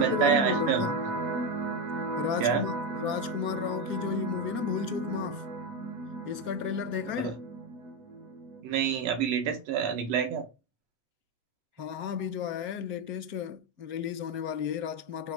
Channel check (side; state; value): left; late; 7.5 ms